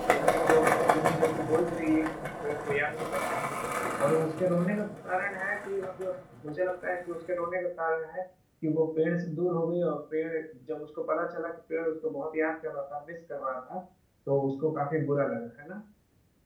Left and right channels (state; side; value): identical; both; correlation 1.00